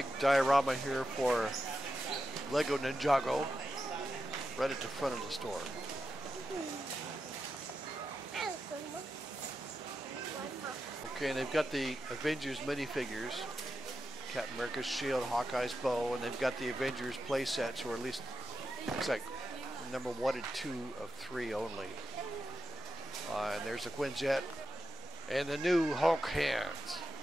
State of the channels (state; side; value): normal; both; correlation 0.88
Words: diorama here for Lego Ninjago, right at the front of the store. Okay, and they've got the Avengers minifigures. Captain America's shield, Hawkeye's bow, and they've got the Avengers play sets, or at least looks like number 1 and 2 of 3 only. And there's a Quinjet and the new Hulk hands.